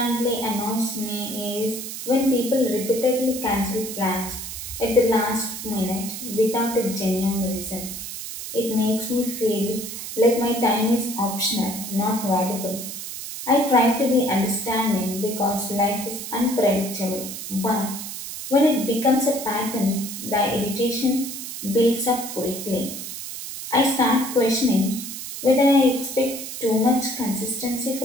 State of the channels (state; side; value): noise; right; hiss, 8 dB below the sound